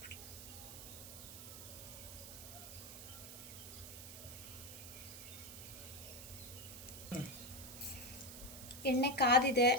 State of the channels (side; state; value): right; noise; hiss, 12 dB below the sound